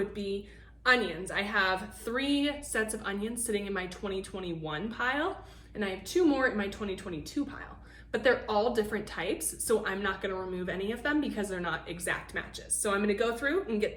be onions. I have 3 sets of onions sitting in my 2021 pile, and I have 2 more in my 2022 pile, but they're all different types, so I'm not gonna remove any of them because they're not exact matches. So I'm gonna go through and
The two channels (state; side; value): identical; both; correlation 1.00